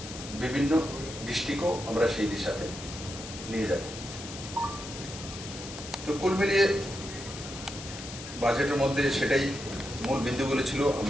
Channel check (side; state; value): left; noise; hiss, 11 dB below the sound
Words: বিভিন্ন ডিস্ট্রিক্টও আমরা সেই দিশাতে নিয়ে যাব। তো কুল মিলিয়ে বাজেটের মধ্যে সেটাই মূল বিন্দুগুলো ছিল,